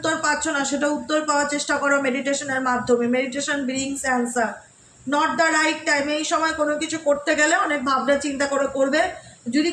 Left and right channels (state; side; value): identical; both; correlation 1.00